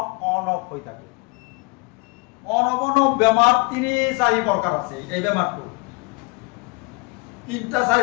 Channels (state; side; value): quieter; right; 28.8 dB